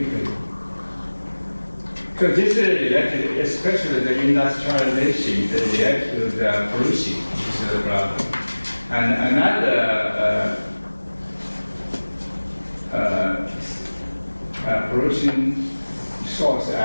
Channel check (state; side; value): inverted; both; correlation -1.00